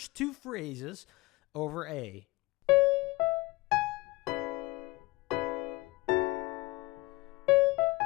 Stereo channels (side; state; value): right; quieter; 21.7 dB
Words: two phrases over A.